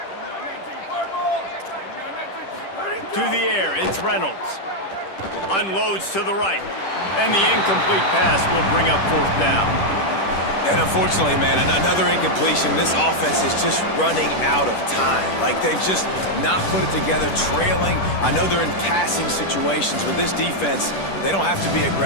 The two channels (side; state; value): right; late; 10 ms